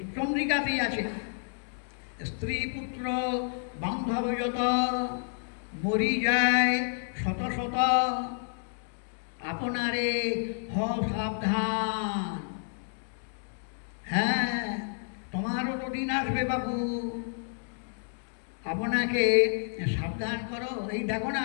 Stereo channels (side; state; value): right; silent; digital silence